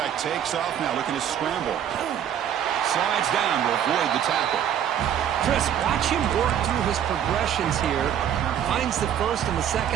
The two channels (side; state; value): left; quieter; 9.7 dB